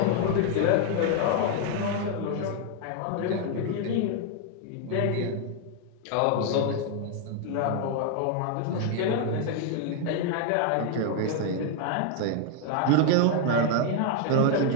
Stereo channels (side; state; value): both; different; correlation 0.00